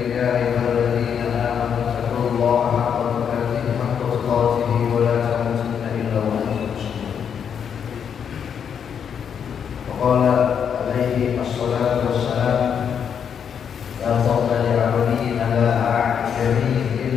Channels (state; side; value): quieter; right; 7.7 dB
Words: ya ayyuhalladzina amanu taqullaha haqqa tuqatih wa la tamutunna illa wa antum muslimun. Wa qala alaihi assalatu wassalam, la fadla li 'abdin ala a'jami